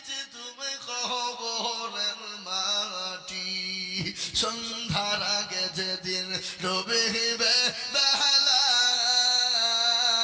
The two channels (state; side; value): identical; both; correlation 1.00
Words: তুমি কবরের মাটি, সন্ধ্যার আগে যেদিন ডুবিবে বেলা,